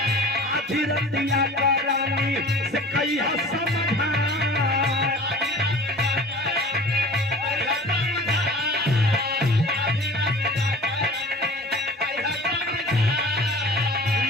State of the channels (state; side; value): normal; both; correlation 0.42